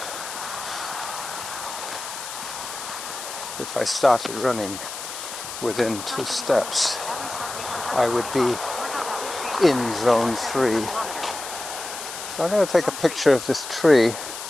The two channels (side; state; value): left; noise; hiss, 9 dB below the sound